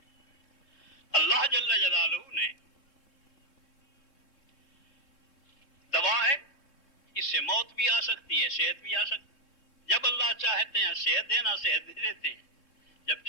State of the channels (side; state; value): right; late; 3.6 ms